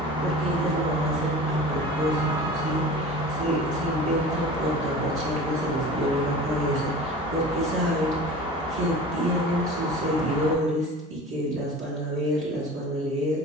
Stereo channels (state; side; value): normal; both; correlation 0.38